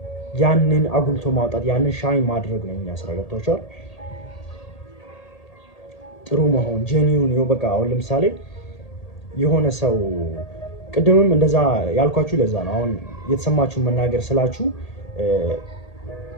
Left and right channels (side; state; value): right; late; 1.8 ms